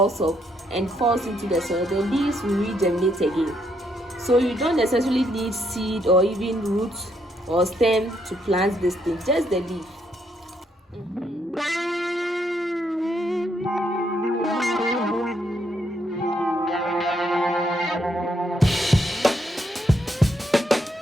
up and falls into the soil, the leaves will regenerate again. So you don't necessarily need seed or even roots or stem to plant this thing, just the leaf.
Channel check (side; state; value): both; normal; correlation 0.74